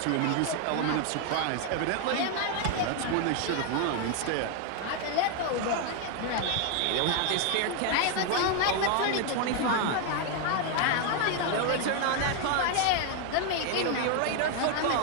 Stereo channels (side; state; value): both; different; correlation 0.01